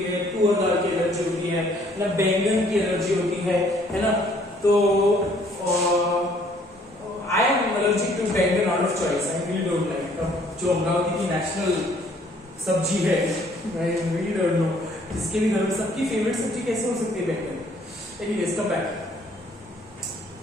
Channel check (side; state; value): both; normal; correlation 0.61